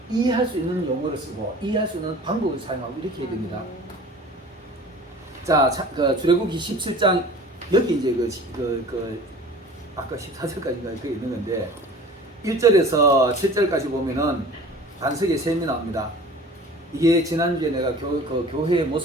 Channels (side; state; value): both; normal; correlation 0.43